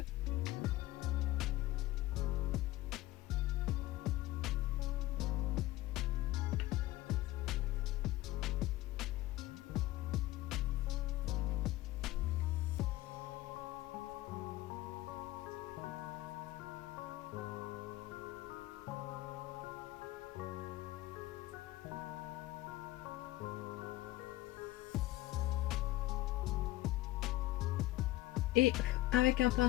Et avec un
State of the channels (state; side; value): quieter; right; 17.0 dB